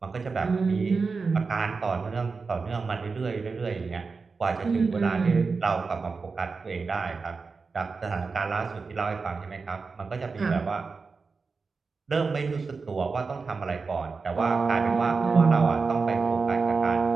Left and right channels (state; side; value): quieter; left; 4.6 dB